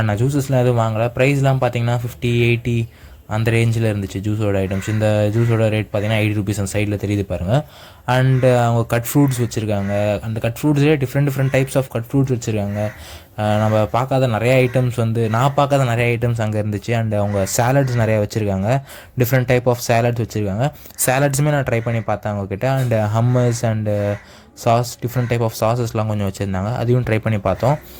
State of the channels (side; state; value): both; identical; correlation 1.00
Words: நான் ஜூஸஸ்லாம் எதுவும் வாங்கலை. ப்ரைஸ்லாம் பார்த்திங்கன்னா 50-80 அந்த ரேஞ்சில் இருந்துச்சு ஜூஸோட ஐட்டம்ஸ். இந்த ஜூஸோட ரேட் பார்த்திங்கன்னா 80 ருபீஸ் அந்த சைடில் தெரியுது பாருங்கள். அண்டு அவங்க கட் ஃப்ரூட்ஸ் வச்சுருக்காங்க. அந்த கட் ஃப்ரூட்ஸ்லேயே different types of cut fruits வச்சுருக்காங்க. நம்ம பார்க்காத நிறைய ஐட்டம்ஸ் நான் பார்க்காத நிறைய ஐட்டம்ஸ் அங்கே இருந்துச்சு. அண்ட் அவங்க சாலட்ஸ் நிறையா வச்சுருக்காங்க, டிஃப்ரெண்ட் டைப் ஆஃப் சாலட்ஸ் வச்சுருக்காங்க. சாலட்ஸுமே நான் ட்ரை பண்ணி பார்த்தேன் அவங்கக்கிட்ட. And hummus and sauce, different type of சாஸஸ்லாம் கொஞ்சம் வச்சுருந்தாங்க, அதையும் ட்ரை பண்ணி பார்த்தோம்.